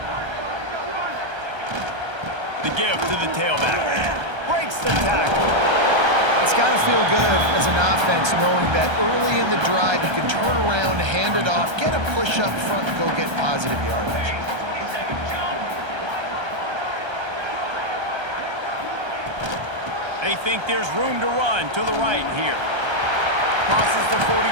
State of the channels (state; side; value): late; left; 1.3 ms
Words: The give to the tailback. Breaks the tackle. It's got to feel good as an offense knowing that early in the drive you can turn around, hand it off, get a push up front, and go get positive yardage. They think there's room to run to the right here. Crosses the 45.